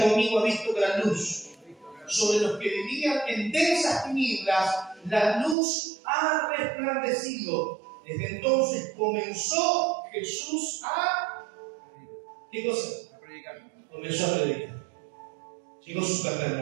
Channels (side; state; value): left; drops out; at 5.6 s